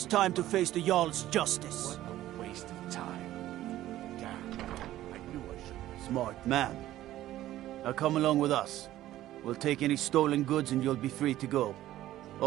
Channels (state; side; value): quieter; left; 14.2 dB